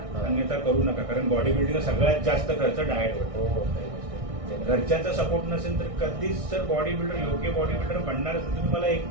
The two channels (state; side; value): late; left; 1.6 ms